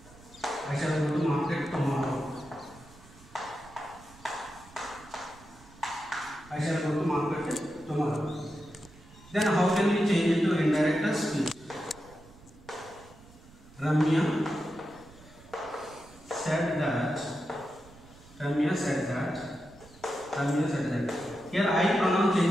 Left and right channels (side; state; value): right; noise; rumble, 23 dB below the sound